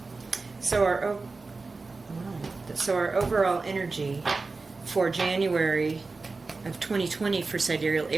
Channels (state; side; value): quieter; left; 3.9 dB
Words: So our overall energy for January of 2020 for Sidereal